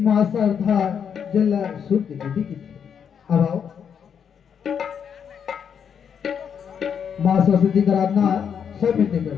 माँ श्रद्धा जल शुद्ध विधि की थी। अब आओ माँ सरस्वती का आराधना सब मिलते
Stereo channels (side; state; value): right; quieter; 7.6 dB